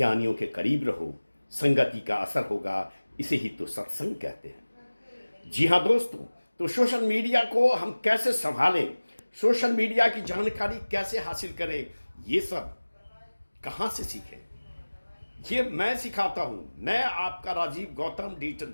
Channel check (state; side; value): inverted; both; correlation -1.00